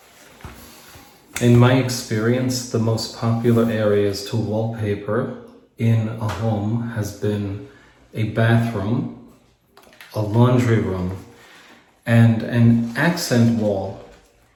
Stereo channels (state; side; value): identical; both; correlation 1.00